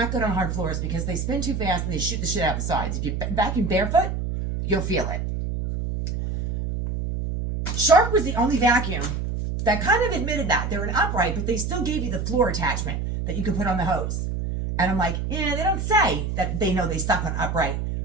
good on hard floors because they spin too fast and they shoot the shit out the sides. If you vacuum barefoot, you'll feel it. Shark was the only vacuum that kind of admitted that. They're an upright, but they still gave you the floor attachment that you can put on the hose. And I'm like, yeah, they don't say that they know they suck on upright,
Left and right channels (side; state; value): right; noise; hum, 2 dB below the sound